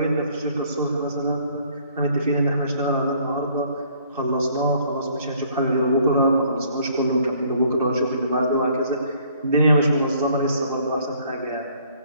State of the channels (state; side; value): inverted; both; correlation -0.61